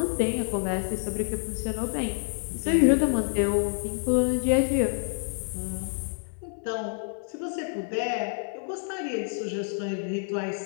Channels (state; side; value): silent; right; 59 dB below the other